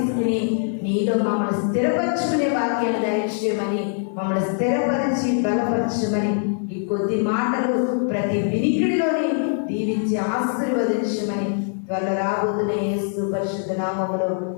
నీలో మమ్మల్ని స్థిరపరచుకునే వాక్యాన్ని దయచేయమని, మమ్మల్ని స్థిరపరిచి బలపరచమని ఈ కొద్ది మాటలు ప్రతి వినికిడిలోని దీవించి ఆశీర్వదించమని త్వరలో రాబోతున్న యేసు పరిశుద్ధ నామములో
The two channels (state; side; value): silent; right; 59 dB below the other